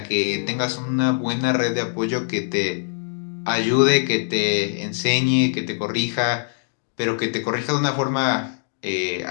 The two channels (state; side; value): silent; right; digital silence